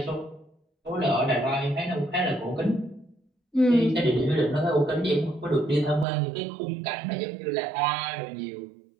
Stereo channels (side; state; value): left; drops out; at 6.1 s